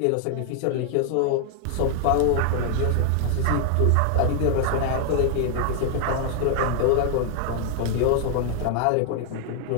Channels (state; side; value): different; both; correlation 0.00